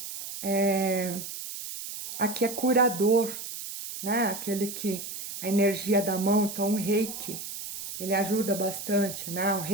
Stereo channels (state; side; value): noise; right; hiss, 9 dB below the sound